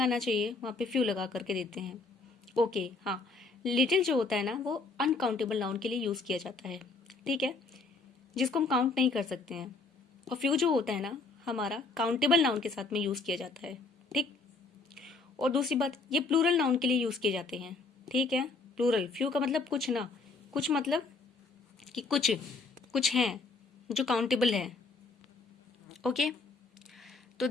चाहिए वहाँ पे फ्यू लगा करके देते हैं। ओके, हाँ, लिटिल जो होता है ना वो अनकाउंटेबल नाउन के लिए यूज किया जाता है। ठीक है, जिसको हम काउंट नहीं कर सकते हैं। और फ्यू जो होता है ना हमारा काउंटेबल नाउन के साथ में यूज किया जाता है। ठीक, और दूसरी बात, ये प्लूरल नाउन के लिए यूज किए जाते हैं। ठीक है, प्लूरल, फ्यू का मतलब कुछ ना, कुछ मतलब कि कुछ हैं जो काउंटेबल है। ओके, तो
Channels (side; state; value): right; quieter; 3.8 dB